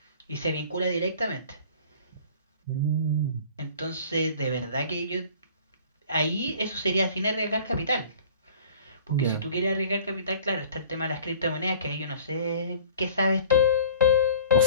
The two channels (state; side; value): inverted; both; correlation -0.47